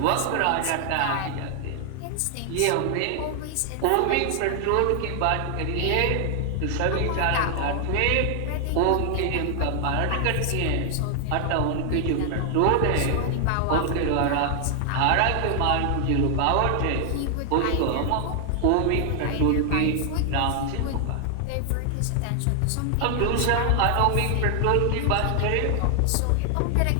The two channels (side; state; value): both; different; correlation 0.00